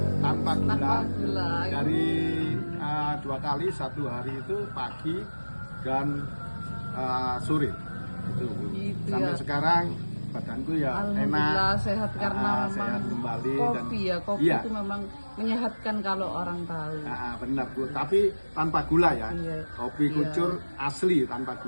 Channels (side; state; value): both; inverted; correlation -1.00